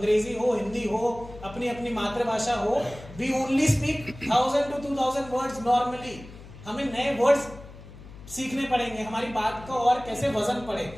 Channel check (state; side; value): noise; left; hum, 17 dB below the sound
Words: हो, हिंदी हो, अपनी अपनी मातृभाषा हो, we only speak 1000 to 2000 words normally. हमें नए वर्ड्स सीखने पड़ेंगे, हमारी बात को और कैसे वजन पड़े,